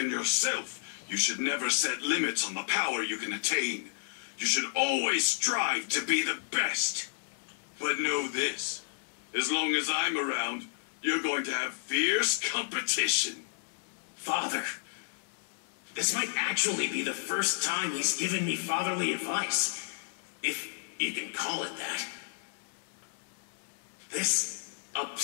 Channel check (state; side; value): silent; right; 57 dB below the other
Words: yourself, you should never set limits on the power you can attain. You should always strive to be the best. But know this, as long as I'm around, you're going to have fierce competition. Father, This might actually be the first time he's given me fatherly advice, if you can call it that. This